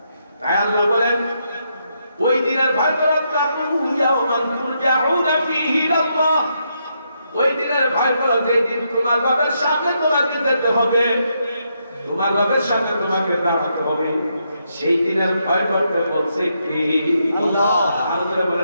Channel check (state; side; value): inverted; both; correlation -0.79